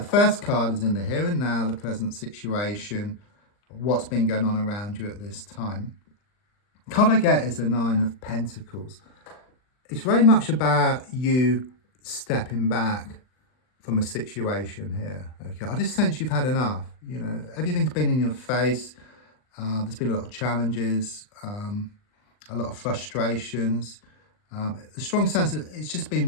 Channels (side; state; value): right; late; 39 ms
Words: first card is in the here and now, the present situation, what's been going on around you at this time. The card I get is the Nine of Pentacles. It's very much about you stepping back from a situation here. Okay, I just sense you've had enough. You know, everything's been in your face. There's been a lot of challenges, a lot of frustrations. A strong sense that it's just